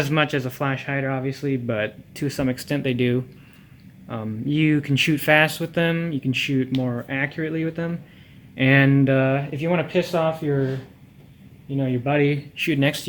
much as a flash hider obviously, but to some extent they do. You can shoot fast with them, you can shoot more accurately with them, and if you want to piss off your your buddy shooting next to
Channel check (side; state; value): both; identical; correlation 1.00